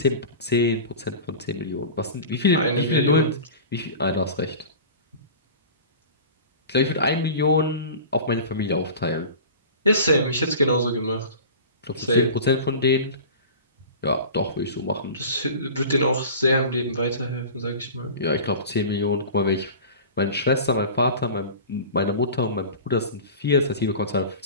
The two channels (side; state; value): both; inverted; correlation -0.36